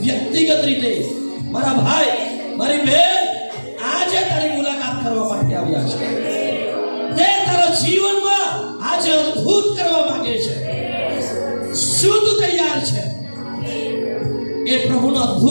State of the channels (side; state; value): both; inverted; correlation -1.00